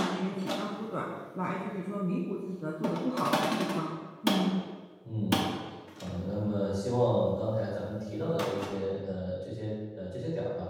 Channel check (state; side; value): identical; both; correlation 1.00